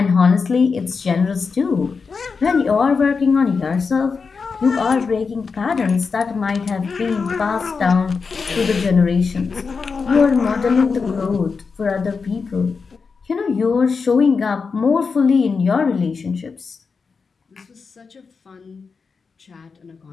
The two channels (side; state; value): right; quieter; 5.1 dB